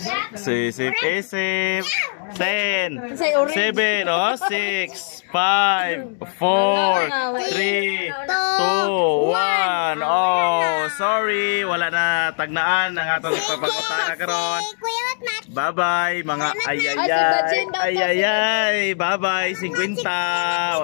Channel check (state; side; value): silent; right; digital silence